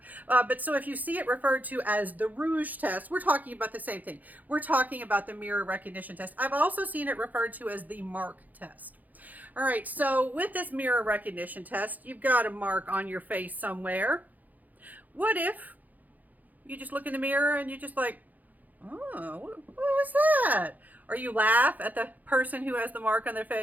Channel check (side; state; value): left; late; 0.081 ms